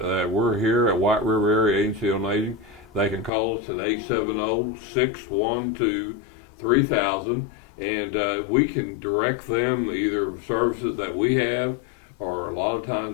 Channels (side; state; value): right; drops out; at 3.3 s